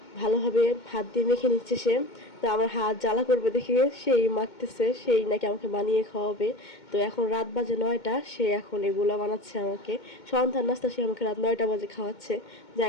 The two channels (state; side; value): late; right; 2.2 ms